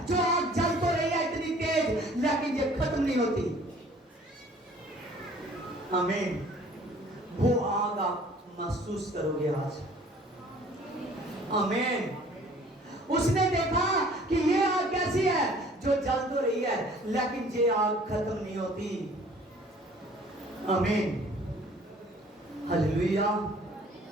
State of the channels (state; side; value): normal; both; correlation 0.53